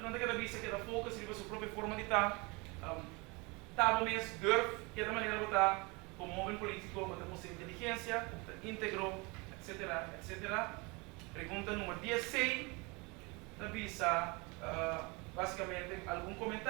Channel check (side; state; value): left; quieter; 27.7 dB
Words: não tem que vista que da foco se a sua própria forma de estar, tá bom mesmo, durf, que é da maneira de estar como homem político, com sua inteligência, íntegro, etc, etc. Pergunta número 16, da vista, basicamente, algum